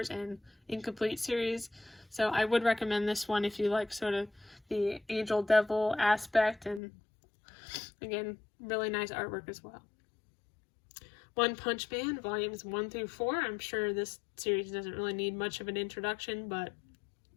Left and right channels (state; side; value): drops out; right; at 6.8 s